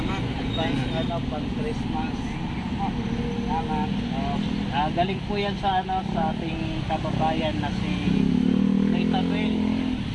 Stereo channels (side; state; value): both; identical; correlation 1.00